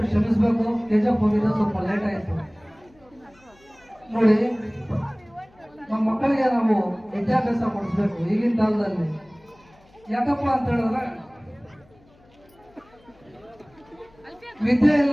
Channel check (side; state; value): left; noise; hum, 30 dB below the sound